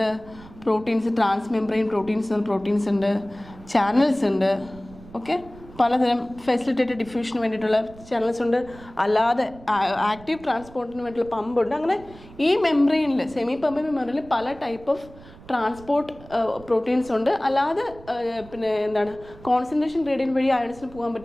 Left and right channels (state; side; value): noise; right; rumble, 20 dB below the sound